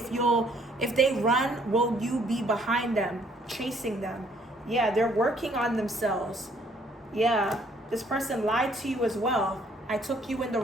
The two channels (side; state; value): both; normal; correlation 0.64